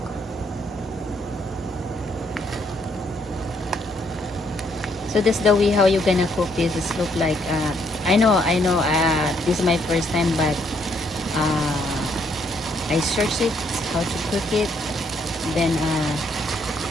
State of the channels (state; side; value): normal; both; correlation 0.71